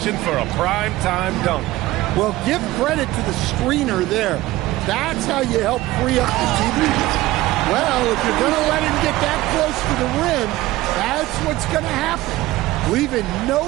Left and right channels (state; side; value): quieter; left; 17.4 dB